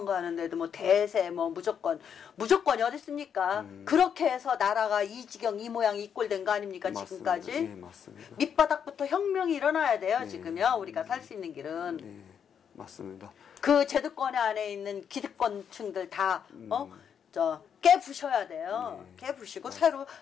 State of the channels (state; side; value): quieter; right; 7.8 dB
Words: 뭐 대세 뭐 무조건이 어디 있습니까? 그렇게 해서 나라가 이 지경 이 모양 이 꼴 된 거 아닙니까? 맞습니다. 지금까지? 네, 맞습니다. 밑바닥부터 혁명이 일어나야 돼요. 지금요. 우리가 살 수 있는 길은. 네, 맞습니다. 그 제도권 안에 있는 기득권층들 다 깨부셔야 돼요. 깨부시고 새로